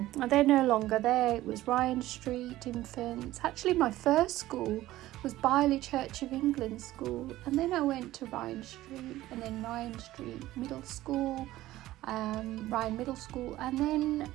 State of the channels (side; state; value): left; quieter; 15.8 dB